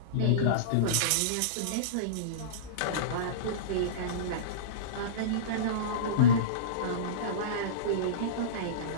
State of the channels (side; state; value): both; different; correlation -0.07